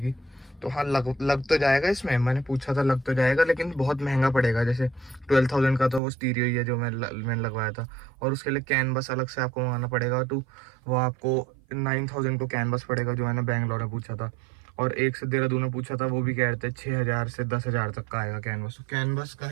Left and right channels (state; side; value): drops out; left; at 6.0 s